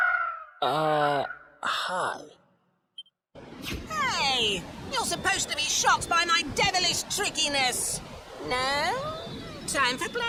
Hi. Hey, you're supposed to be shocked by my devilish trickiness. No? Time for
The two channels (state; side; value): identical; both; correlation 1.00